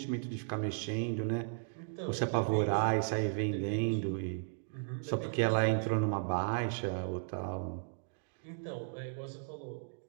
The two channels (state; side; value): silent; left; digital silence